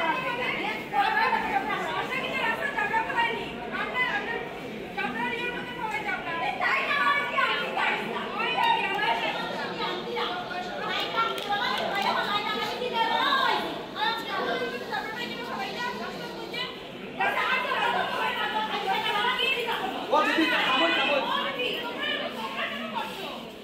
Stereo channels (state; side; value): identical; both; correlation 1.00